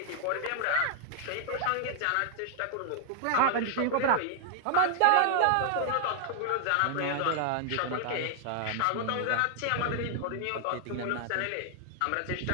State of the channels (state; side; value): different; both; correlation 0.00